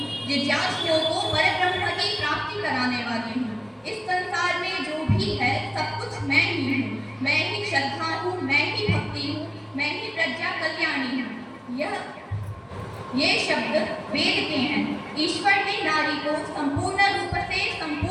जिज्ञासुओं को परब्रह्म की प्राप्ति कराने वाली हूँ। इस संसार में जो भी है सब कुछ मैं ही हूँ। मैं ही श्रद्धा हूँ, मैं ही भक्ति हूँ, मैं ही प्रज्ञा कल्याणी हूँ। ये शब्द वेद के हैं। ईश्वर ने नारी को संपूर्ण रूप से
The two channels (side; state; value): both; identical; correlation 1.00